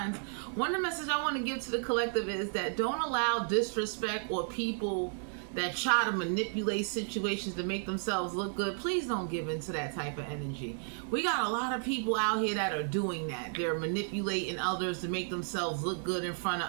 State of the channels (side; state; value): left; silent; 56 dB below the other